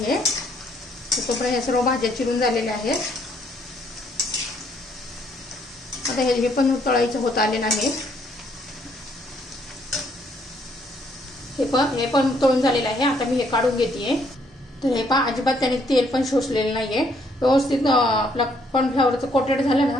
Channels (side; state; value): both; normal; correlation 0.68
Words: आहे। तोपर्यंत हे सर्व भाज्या चिरून झालेल्या आहेत। आता हे पण तळायचं होत आलेलं आहे। हे पण तळून झालेलं आहे। आता मी हे काढून घेतेय। तर हे पहा, अजिबात त्याने तेल पण शोषलेलं नाहीये। व्यवस्थित आपला कॉर्नफ्लॉवरचं कोटेड झालं ना